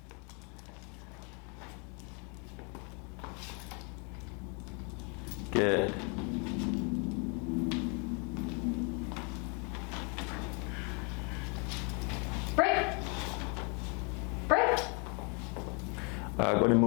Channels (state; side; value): quieter; right; 34.3 dB